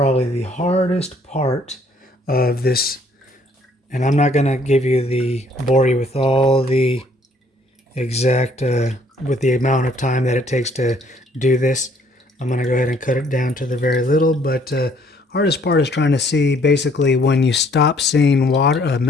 the hardest part of this, and I'm not going to bore you with all the exact, with the amount of time that it takes to do this. I'm going to go ahead and cut it down to the very little, but hardest part is trying to see basically when you stop seeing water,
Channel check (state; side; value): normal; both; correlation 0.63